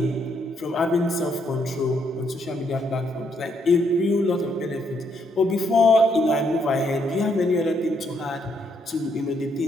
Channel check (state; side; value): normal; both; correlation 0.74